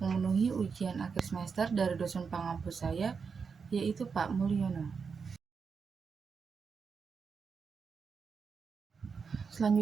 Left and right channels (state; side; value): quieter; left; 5.6 dB